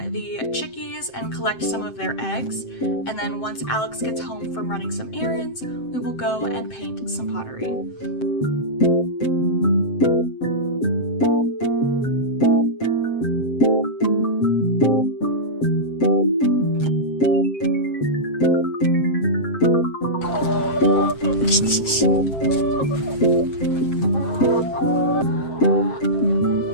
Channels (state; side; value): late; right; 7.7 ms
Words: the chickies and collect some of their eggs. And then once Alex gets home from running some errands, we will go and paint some pottery.